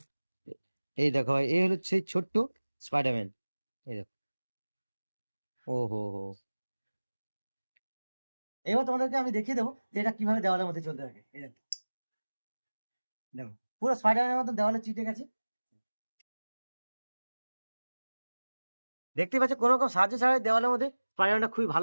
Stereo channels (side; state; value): both; inverted; correlation -1.00